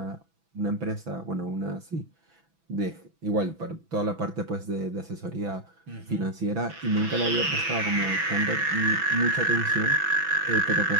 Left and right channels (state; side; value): late; left; 6.1 ms